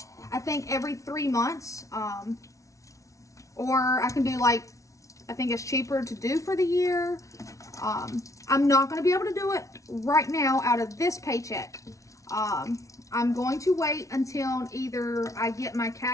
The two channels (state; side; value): late; right; 0.15 ms